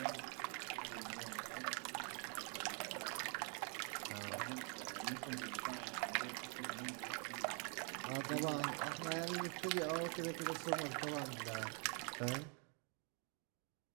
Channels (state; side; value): quieter; left; 38.3 dB